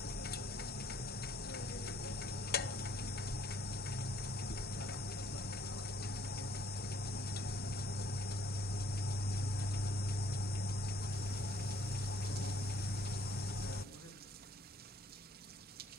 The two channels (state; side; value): normal; both; correlation 0.63